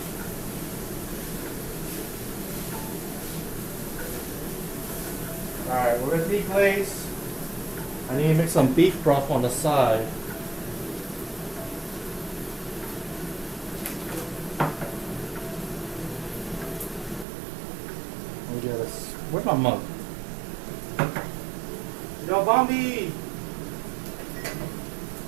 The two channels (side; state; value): left; drops out; at 17.2 s